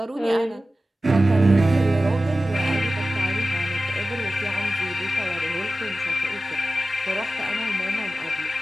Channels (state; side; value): normal; both; correlation 0.95